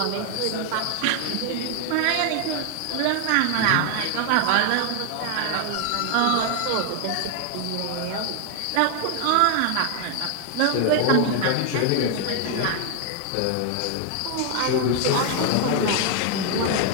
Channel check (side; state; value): both; different; correlation 0.00